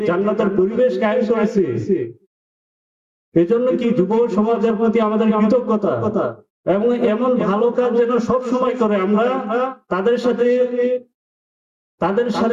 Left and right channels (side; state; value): both; identical; correlation 1.00